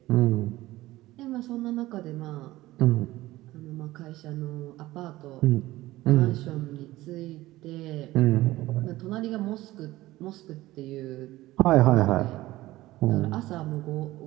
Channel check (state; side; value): quieter; left; 17.3 dB